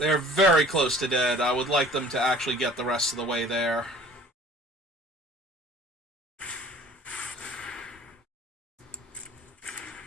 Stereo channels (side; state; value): both; normal; correlation 0.48